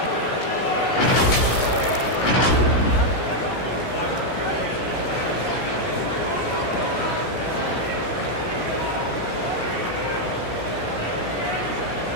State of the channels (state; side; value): late; right; 16 ms